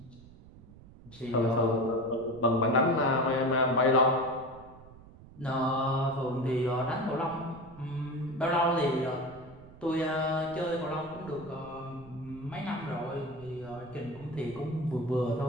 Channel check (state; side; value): noise; right; rumble, 20 dB below the sound